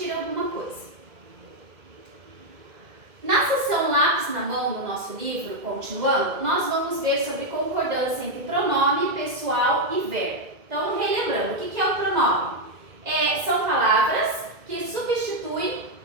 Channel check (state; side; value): late; left; 2.1 ms